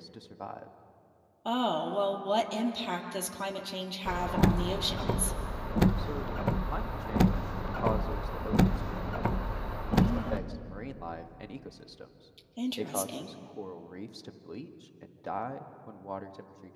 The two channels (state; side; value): identical; both; correlation 1.00